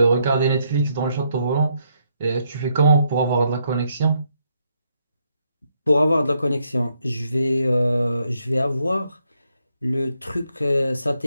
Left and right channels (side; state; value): both; inverted; correlation -0.76